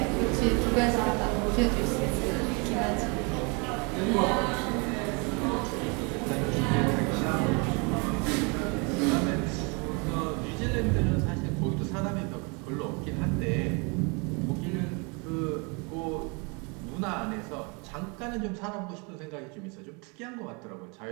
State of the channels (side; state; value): left; quieter; 31.7 dB